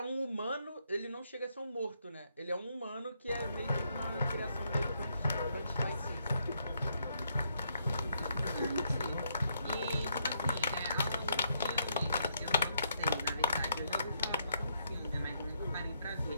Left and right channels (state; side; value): inverted; both; correlation -0.75